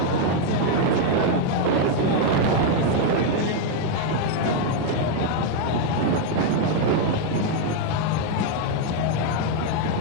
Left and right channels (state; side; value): different; both; correlation 0.01